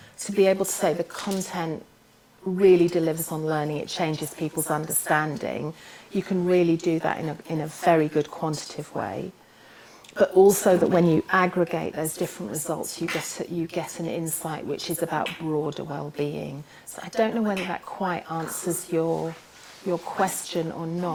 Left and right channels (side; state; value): both; identical; correlation 1.00